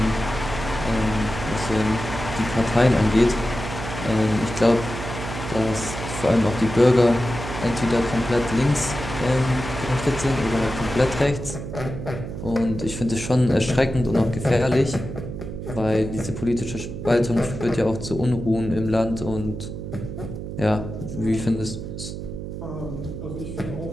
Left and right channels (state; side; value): noise; right; hum, 8 dB below the sound